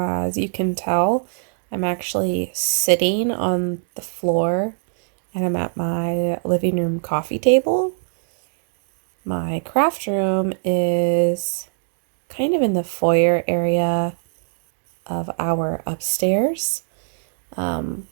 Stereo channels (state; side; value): silent; left; digital silence